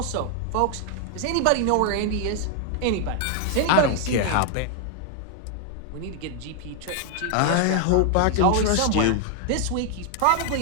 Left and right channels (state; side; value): different; both; correlation 0.00